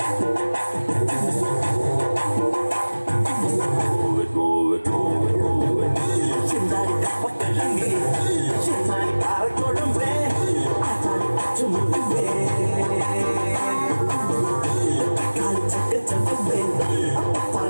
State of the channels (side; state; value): both; inverted; correlation -1.00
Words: Move it, move it, move it, move it. Chindari kapakalangi, chindari parakodumbe, atari achumudumbe. Kali chakka chakkumbe,